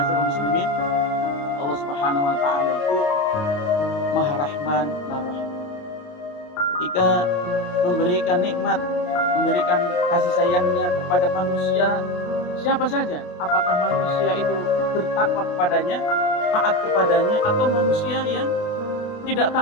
muslimin, Allah Subhanahu wa taala itu Maha Rahman, Maha Rahim. Ketika memberikan nikmat, memberikan kasih sayangnya kepada manusia, siapa saja, apakah manusia itu bertakwa kepadanya, taat kepadanya, atau manusia yang tidak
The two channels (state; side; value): late; right; 28 ms